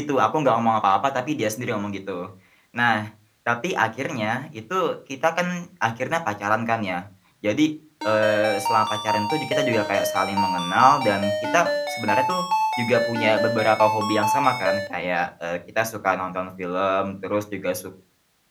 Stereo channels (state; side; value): identical; both; correlation 1.00